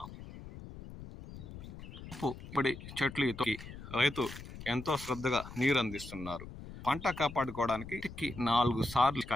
ఇప్పుడు చెట్లు రైతు ఎంతో శ్రద్ధగా నీరు అందిస్తున్నారు. పంట కాపాడుకోవడానికి 4 సార్లు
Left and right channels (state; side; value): noise; left; rumble, 13 dB below the sound